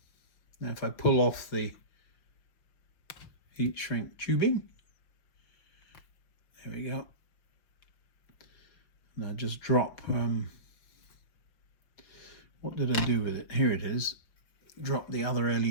Now if I pull off the heat shrink tubing, there we go. And I just drop, what did I do with it? Here it is. Drop the other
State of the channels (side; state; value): right; late; 5.6 ms